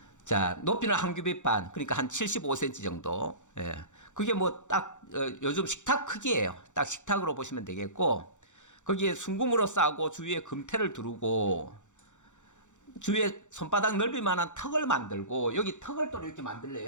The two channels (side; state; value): right; late; 0.85 ms